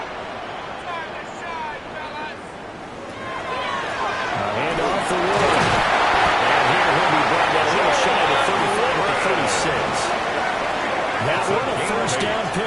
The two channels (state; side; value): identical; both; correlation 1.00